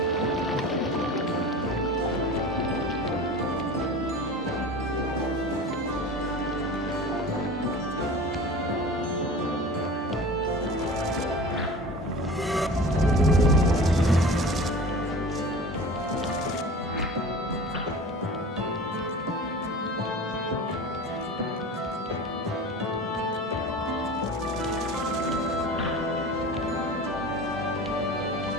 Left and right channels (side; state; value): both; normal; correlation 0.36